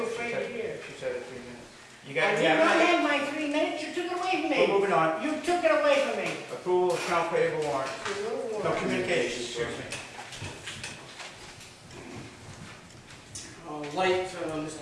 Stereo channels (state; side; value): identical; both; correlation 1.00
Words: afraid to hear? She said it 3 minutes. You I got, did not have my 3 minutes, you took it away from me. We're moving on. You took it away from me. Approval of account payable warrant. No communication, excuse me. Light,